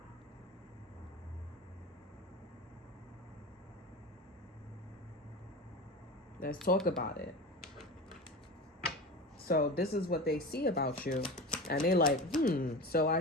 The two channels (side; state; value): both; normal; correlation 0.29